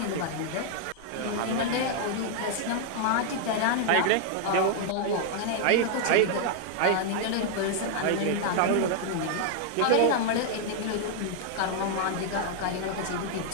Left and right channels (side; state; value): both; different; correlation 0.00